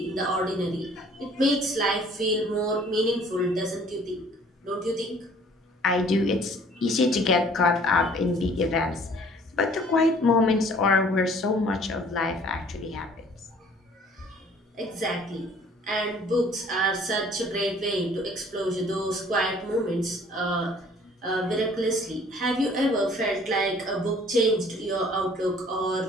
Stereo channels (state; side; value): normal; both; correlation 0.55